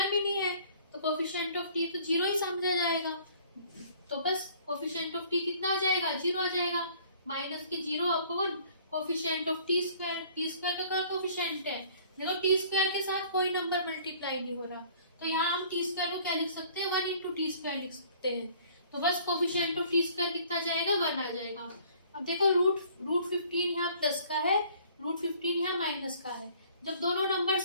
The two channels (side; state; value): both; inverted; correlation -0.55